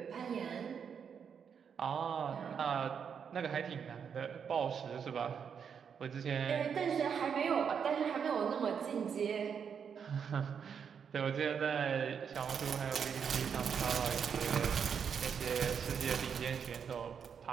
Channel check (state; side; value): quieter; left; 7.1 dB